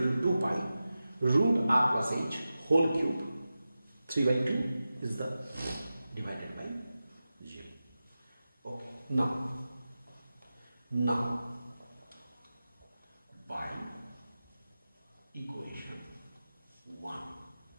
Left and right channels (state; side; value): inverted; both; correlation -0.94